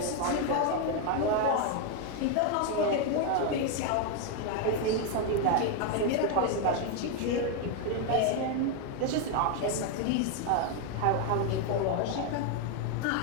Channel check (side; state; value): both; different; correlation 0.01